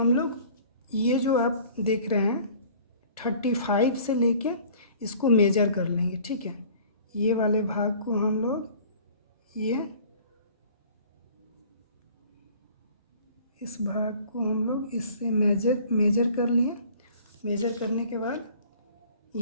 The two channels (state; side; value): inverted; both; correlation -0.49